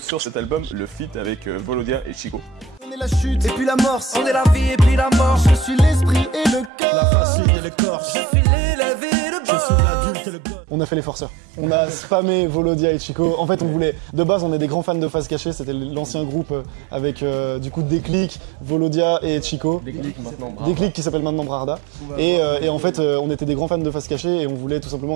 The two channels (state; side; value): drops out; left; at 6.7 s